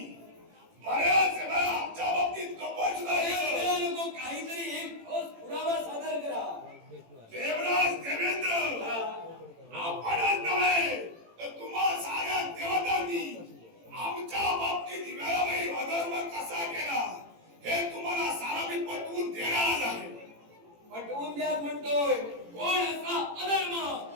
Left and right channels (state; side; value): late; left; 18 ms